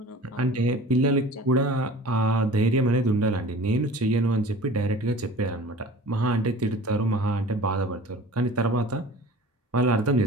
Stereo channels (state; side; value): normal; both; correlation 0.42